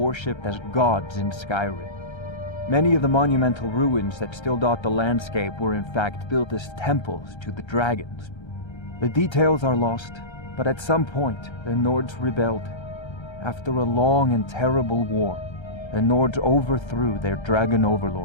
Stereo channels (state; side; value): late; right; 1.3 ms